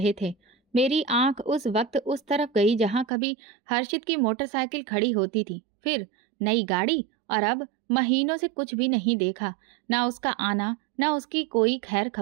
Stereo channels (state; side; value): drops out; left; at 3.1 s